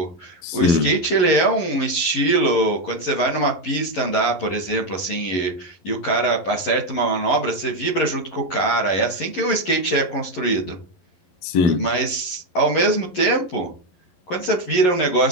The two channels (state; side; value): late; right; 11 ms